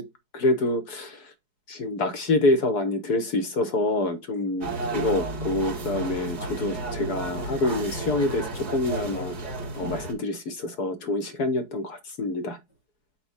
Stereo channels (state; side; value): late; right; 4.7 ms